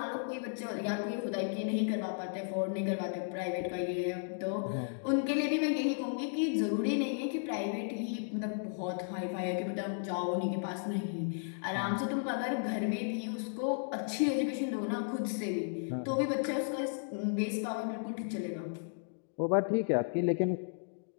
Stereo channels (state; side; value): silent; right; digital silence